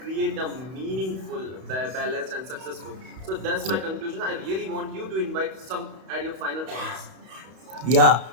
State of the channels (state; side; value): late; left; 31 ms